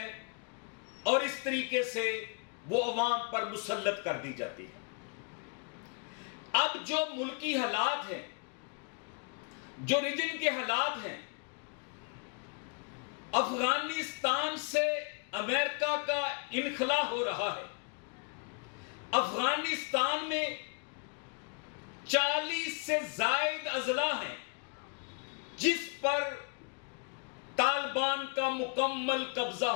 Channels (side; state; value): right; quieter; 36.6 dB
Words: اور اس طریقے سے وہ عوام پر مسلط کر دی جاتی ہے۔ اب جو ملکی حالات ہیں، جو ریجن کے حالات ہیں، افغانستان سے امریکہ کا انخلا ہو رہا ہے۔ افغانستان میں 40 سے زائد اضلاع ہیں جس پر طالبان کا مکمل قبضہ